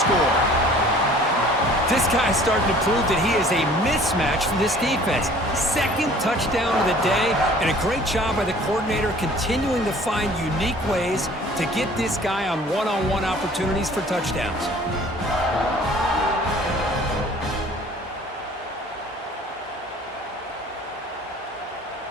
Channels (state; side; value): normal; both; correlation 0.51